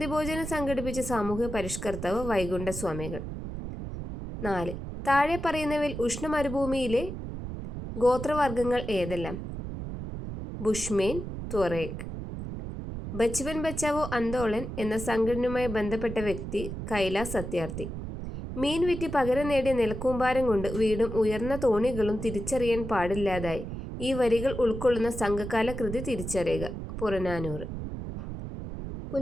ഭോജനം സംഘടിപ്പിച്ച സാമൂഹ്യ പരിഷ്കർത്താവ് വൈകുണ്ഠ സ്വാമികൾ. 4. താഴെ പറയുന്നവയിൽ ഉഷ്ണമരുഭൂമിയിലെ ഗോത്രവർഗങ്ങൾ ഏതെല്ലാം? ബുഷ്മേൻ, ത്വറേക്ക്. ബച്പൻ ബച്ചാവോ ആന്തോളൻ എന്ന സംഘടനയുമായി ബന്ധപ്പെട്ട വ്യക്തി കൈലാസ് സത്യാർത്ഥി. മീൻ വിറ്റ് പകരം നേടിയ നിലക്കൂമ്പാരം കൊണ്ട് വീടും ഉയർന്ന തോണികളും തിരിച്ചറിയാൻ പാടില്ലാതായി. ഈ വരികൾ ഉൾക്കൊള്ളുന്ന സംഘകാല കൃതി തിരിച്ചറിയുക. പുറനാനൂറ്.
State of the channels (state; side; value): noise; right; rumble, 7 dB below the sound